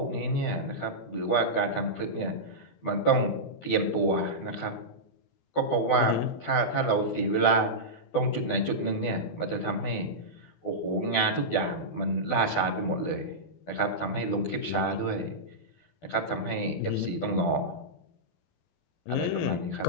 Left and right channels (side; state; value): right; late; 12 ms